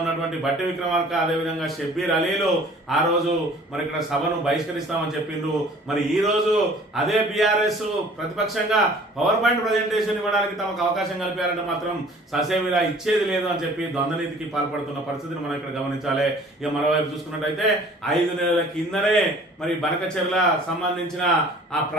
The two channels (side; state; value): both; normal; correlation 0.51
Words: ఉన్నటువంటి బట్టి విక్రమార్క, అదేవిధంగా షబ్బీర్ అలీలు ఆ రోజు మరి ఇక్కడ సభను బహిష్కరిస్తామని చెప్పిండ్రు. మరి ఈ రోజు అదే బీఆర్ఎస్ ప్రతిపక్షంగా పవర్ పాయింట్ ప్రజెంటేషన్ ఇవ్వడానికి తమకు అవకాశం కల్పారంటే మాత్రం ససేమిరా ఇచ్చేది లేదు అని చెప్పి ద్వంద్వనీతికి పాల్పడుతున్న పరిస్థితిని మనం ఇక్కడ గమనించాలి. ఇక మరోవైపు చూసుకున్నట్టయితే 5 నెలల కిందనే మరి బనకచెర్ల సంబంధించిన ఆ